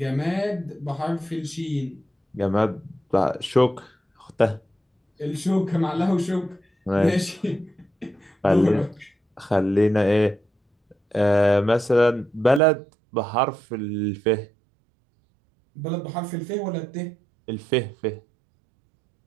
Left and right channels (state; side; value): drops out; left; at 12.6 s